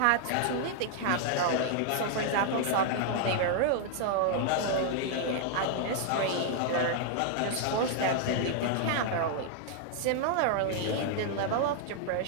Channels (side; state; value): both; different; correlation 0.00